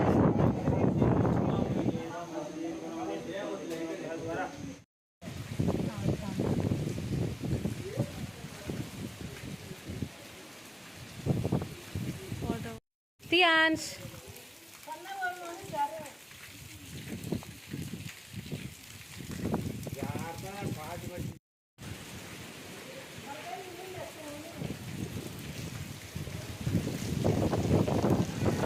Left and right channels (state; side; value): identical; both; correlation 1.00